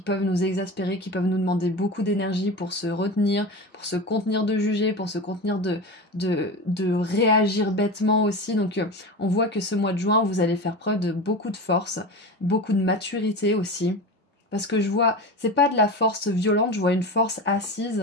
peuvent nous exaspérer, qui peuvent nous demander beaucoup d'énergie pour se retenir, pour se contenir de juger, pour se contenir de réagir bêtement aussi. Donc on voit que ce mois de juin, vous allez faire preuve de beaucoup de force, beaucoup de maturité aussi. Parce que je vois, c'est pas de la force violente, je vois une force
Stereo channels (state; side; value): normal; both; correlation 0.26